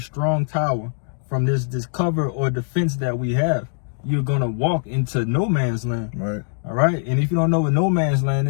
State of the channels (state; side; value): silent; right; digital silence